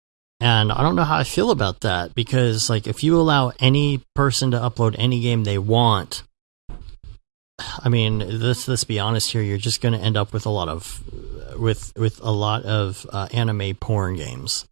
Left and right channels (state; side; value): silent; left; digital silence